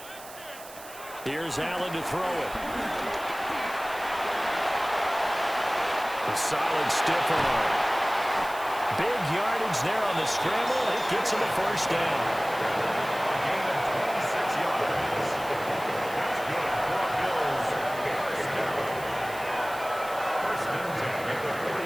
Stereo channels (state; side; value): noise; right; hiss, 17 dB below the sound